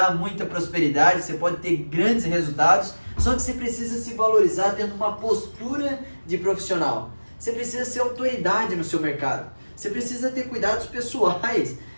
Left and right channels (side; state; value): both; inverted; correlation -1.00